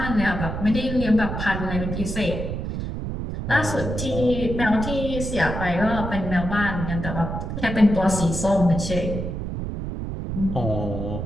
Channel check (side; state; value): right; noise; rumble, 5 dB below the sound